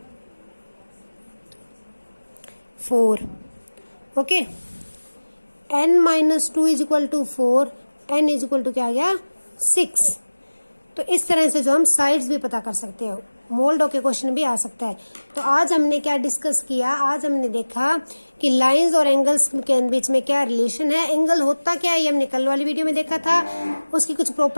4। Okay, n-2 is equal to 4, n is equal to क्या आ गया? 6। तो इस तरह से जो हम साइड्स भी पता कर सकते हैं, मोल्ड के क्वेश्चन भी आ सकता है। तो आज हमने क्या डिस्कस किया? आज हमने देखा कि लाइंस और एंगल्स के बीच में क्या रिलेशन है, एंगल होता क्या है ये हमने कल वाली वीडियो में देखा था। उसकी कुछ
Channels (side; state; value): both; inverted; correlation -1.00